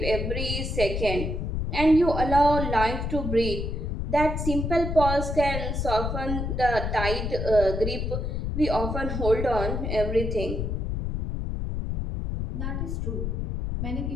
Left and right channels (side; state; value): left; noise; rumble, 2 dB below the sound